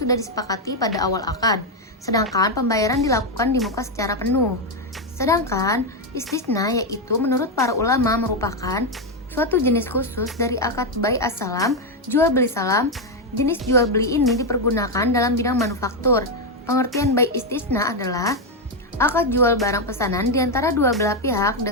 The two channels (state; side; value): normal; both; correlation 0.05